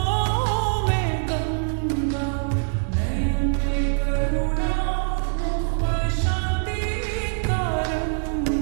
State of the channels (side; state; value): left; silent; digital silence